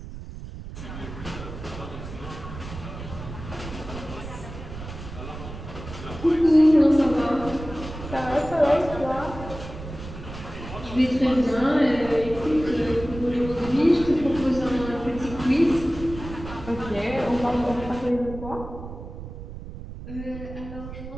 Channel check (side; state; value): right; noise; rumble, 11 dB below the sound